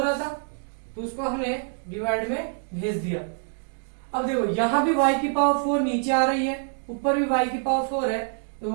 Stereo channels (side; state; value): left; silent; 58 dB below the other